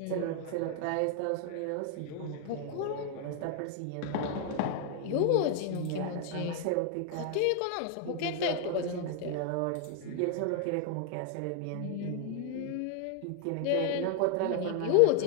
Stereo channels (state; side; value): different; both; correlation 0.01